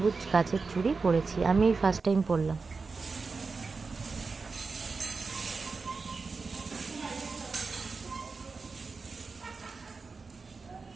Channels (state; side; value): quieter; left; 4.4 dB